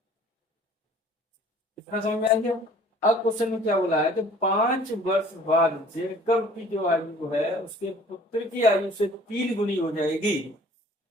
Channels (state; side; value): normal; both; correlation 0.51